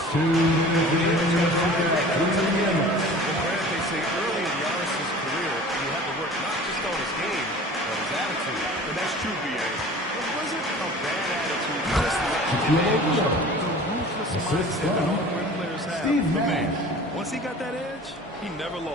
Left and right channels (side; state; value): both; normal; correlation 0.42